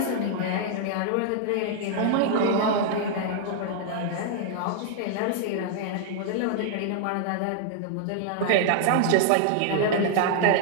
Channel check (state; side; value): different; both; correlation -0.01